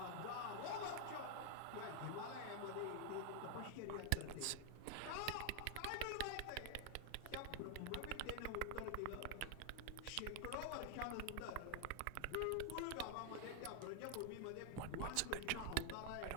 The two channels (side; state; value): both; different; correlation 0.00